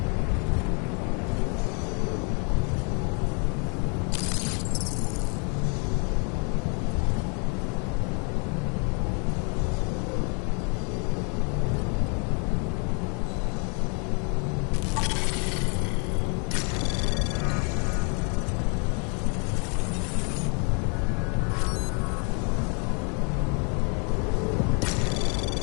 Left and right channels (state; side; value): quieter; right; 36.7 dB